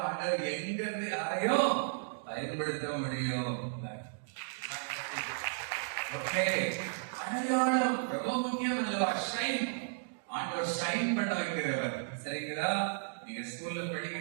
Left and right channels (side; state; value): left; silent; digital silence